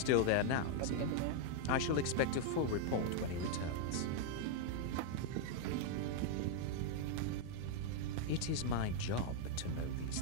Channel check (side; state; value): both; different; correlation 0.00